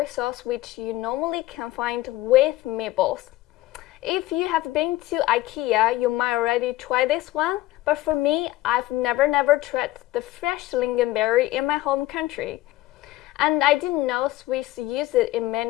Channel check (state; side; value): quieter; right; 16.5 dB